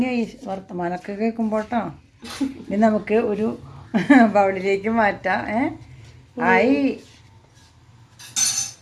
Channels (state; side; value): identical; both; correlation 1.00